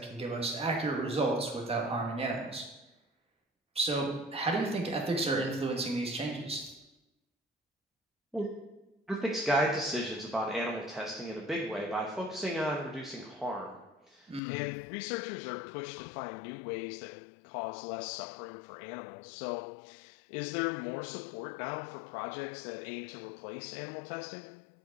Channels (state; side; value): drops out; right; at 14.4 s